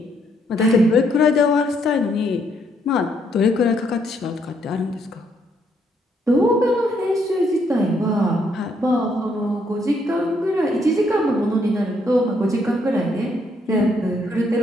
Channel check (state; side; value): normal; both; correlation 0.72